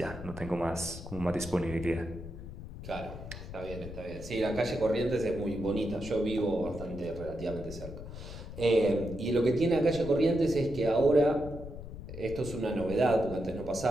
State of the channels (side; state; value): left; noise; rumble, 11 dB below the sound